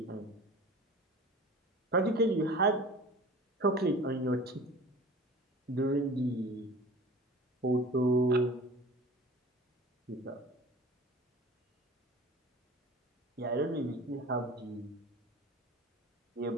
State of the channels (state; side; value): normal; both; correlation 0.40